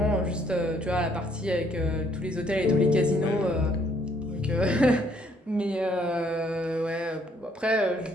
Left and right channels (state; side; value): normal; both; correlation 0.66